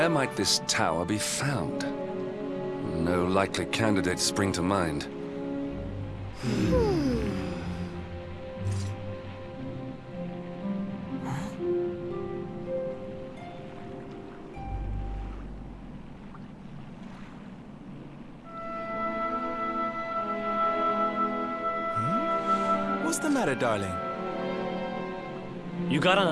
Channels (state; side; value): identical; both; correlation 1.00